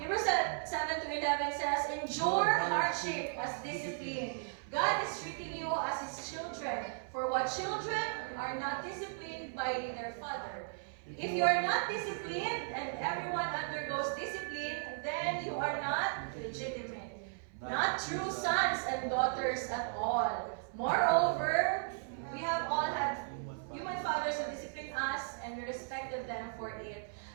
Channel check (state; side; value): silent; left; 54 dB below the other